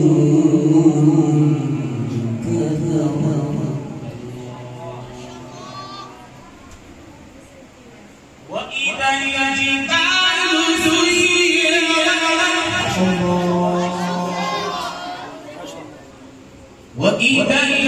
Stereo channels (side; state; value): both; identical; correlation 1.00